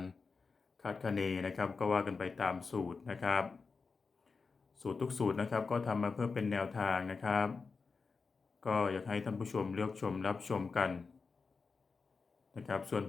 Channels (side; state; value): right; quieter; 4.6 dB